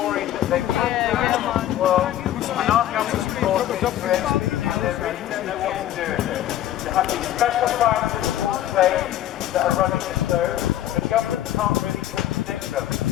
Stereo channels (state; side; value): quieter; right; 12.6 dB